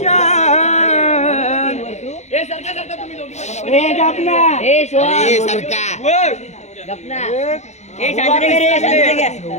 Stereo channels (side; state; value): right; late; 0.33 ms